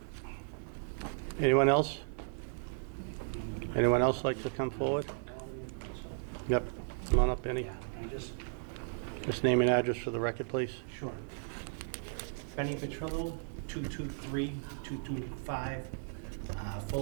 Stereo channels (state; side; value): silent; left; digital silence